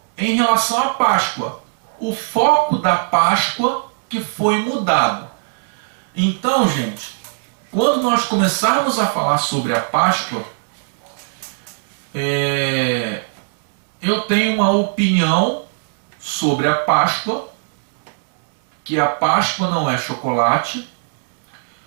em relação à Páscoa. O foco da Páscoa que foi mudado. Então, gente, quando nós começarmos a falar sobre a Páscoa, eu tenho uma opinião sobre a Páscoa, que a Páscoa não é chocolate,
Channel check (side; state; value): left; silent; digital silence